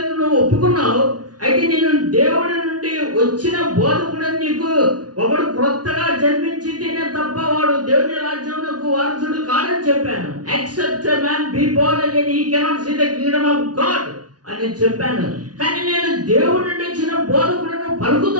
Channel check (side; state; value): left; late; 0.69 ms